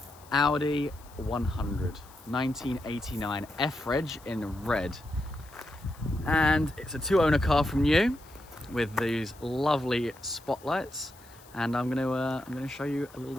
Audi 100 1989 F-Reg in red, and it's a 2-owner car from new with these lovely spotlights. And I'm gonna show you a little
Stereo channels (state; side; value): noise; left; hiss, 24 dB below the sound